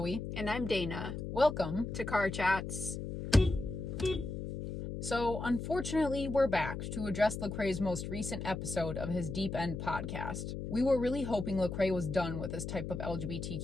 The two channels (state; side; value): noise; left; hum, 5 dB below the sound